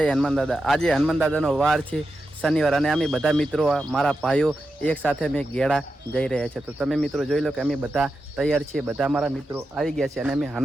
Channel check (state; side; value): normal; both; correlation 0.89